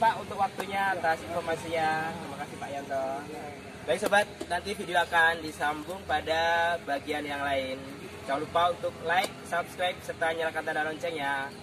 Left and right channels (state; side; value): identical; both; correlation 1.00